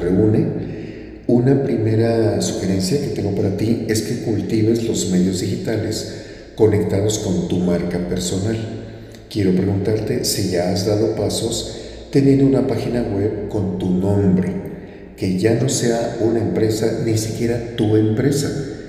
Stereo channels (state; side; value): identical; both; correlation 1.00